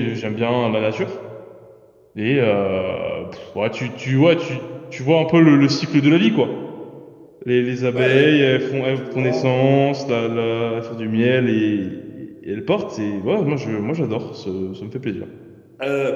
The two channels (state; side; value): identical; both; correlation 1.00